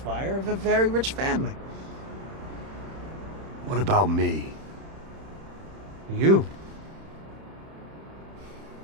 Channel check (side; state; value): left; late; 31 ms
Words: of a very rich family. What about me? You.